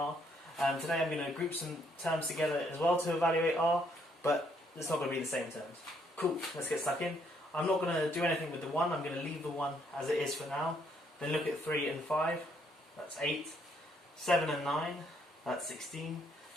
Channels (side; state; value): both; normal; correlation 0.70